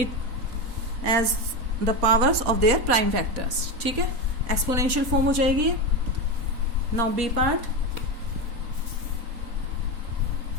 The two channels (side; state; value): left; late; 4.1 ms